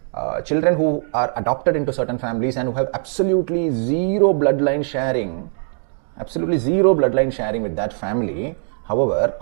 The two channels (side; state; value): left; silent; digital silence